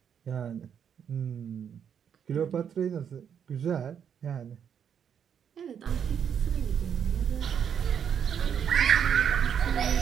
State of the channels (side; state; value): left; quieter; 8.1 dB